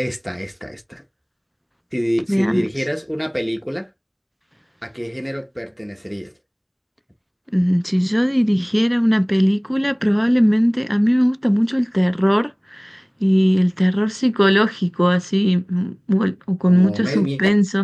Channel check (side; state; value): both; identical; correlation 1.00